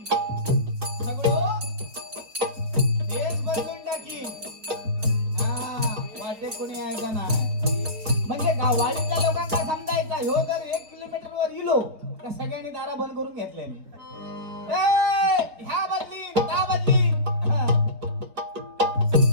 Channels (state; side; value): late; left; 4.5 ms